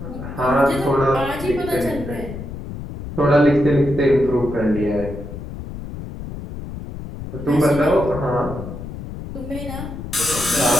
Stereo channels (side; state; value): left; noise; rumble, 9 dB below the sound